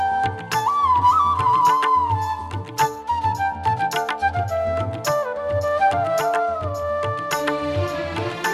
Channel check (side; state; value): both; identical; correlation 1.00